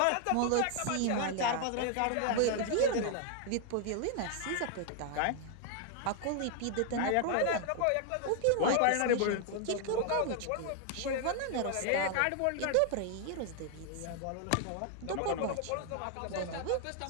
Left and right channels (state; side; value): different; both; correlation 0.00